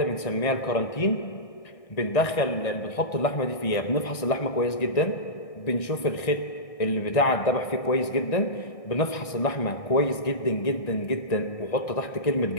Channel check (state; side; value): late; right; 1.6 ms